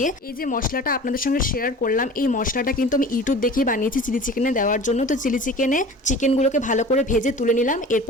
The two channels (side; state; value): both; normal; correlation 0.40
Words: এই যে মশলাটা আপনাদের সঙ্গে শেয়ার করলাম, এই মশলাটা কিন্তু আমি ইউটিউব দেখে বানিয়েছি চিলি চিকেনে দেওয়ার জন্য। তো চিলি চিকেনে চিকেনগুলোকে ভালো করে ভেজে তুলে নিলাম।